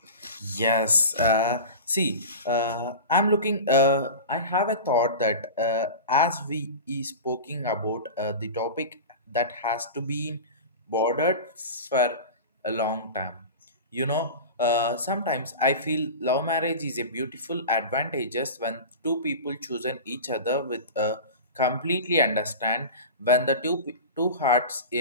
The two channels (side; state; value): both; inverted; correlation -0.31